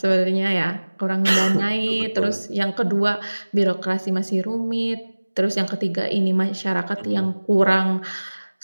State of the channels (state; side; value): inverted; both; correlation -1.00